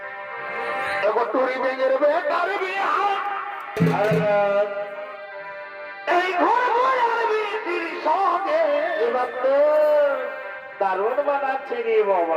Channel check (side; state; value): both; identical; correlation 1.00